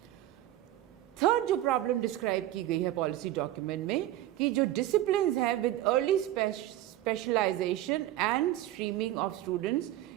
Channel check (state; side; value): quieter; left; 14.1 dB